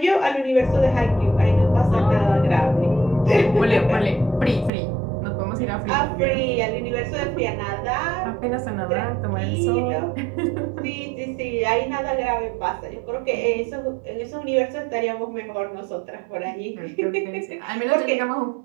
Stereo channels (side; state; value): left; drops out; at 4.7 s